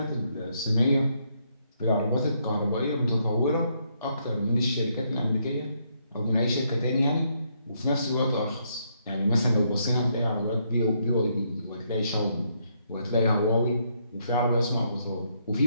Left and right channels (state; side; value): inverted; both; correlation -0.74